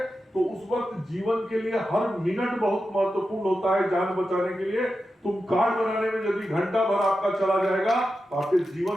तो उस वक्त जीवन के लिए हर मिनट बहुत महत्वपूर्ण होता है जान बचाने के लिए। तुम कार्ड बनाने में यदि घंटा भर आपका चला जाएगा तो आपके जीवन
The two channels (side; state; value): both; normal; correlation 0.90